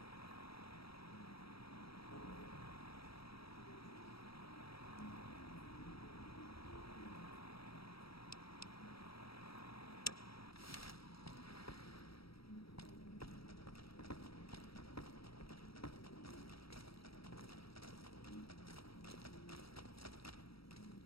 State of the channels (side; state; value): right; late; 0.76 ms